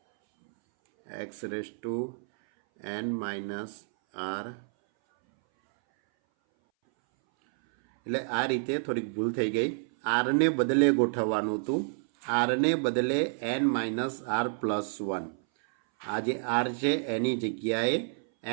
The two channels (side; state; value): left; silent; 58 dB below the other